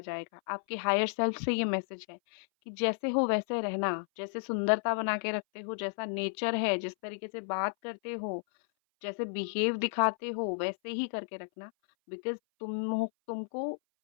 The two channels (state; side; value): silent; right; 56 dB below the other